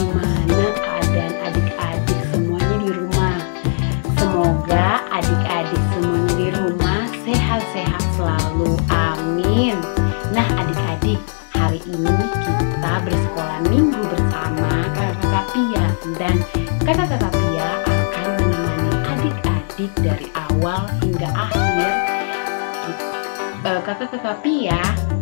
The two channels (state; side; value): silent; right; digital silence